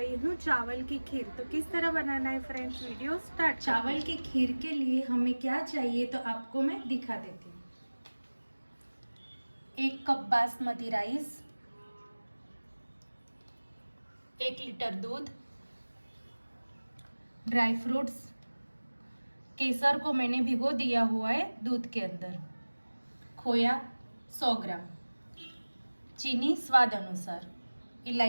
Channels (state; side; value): inverted; both; correlation -1.00